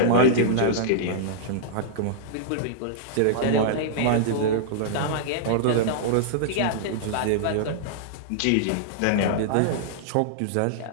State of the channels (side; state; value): both; different; correlation -0.02